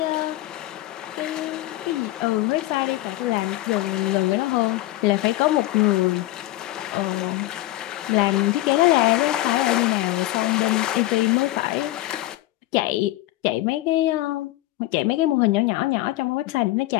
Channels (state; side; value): quieter; right; 16.7 dB